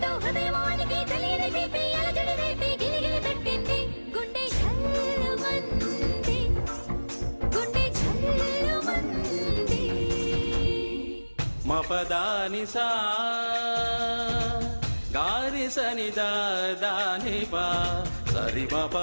మపదాని సా గారి సని దాని పా సరి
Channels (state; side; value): inverted; both; correlation -1.00